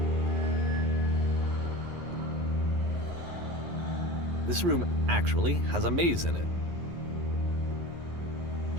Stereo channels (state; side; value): late; left; 11 ms